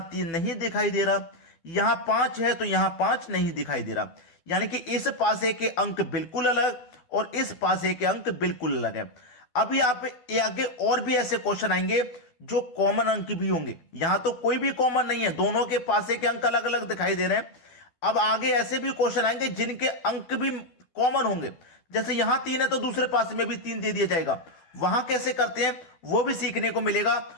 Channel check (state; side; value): late; right; 12 ms